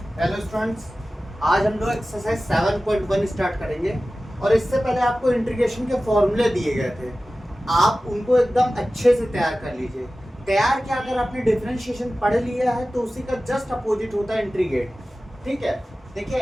Hello students, आज हम लोग एक्सरसाइज 7.1 स्टार्ट करेंगे और इससे पहले आपको इंटीग्रेशन के फॉर्मूले दिए गए थे, आप उनको एकदम अच्छे से तैयार कर लीजिए। तैयार क्या, अगर आपने डिफरेंशिएशन पढ़ लिया है तो उसी का जस्ट अपोजिट होता है इंटीग्रेट। ठीक है, देखिए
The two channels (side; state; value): both; normal; correlation 0.96